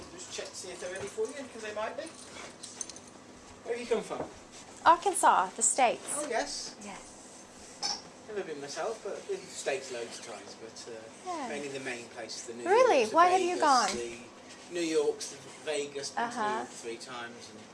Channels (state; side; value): identical; both; correlation 1.00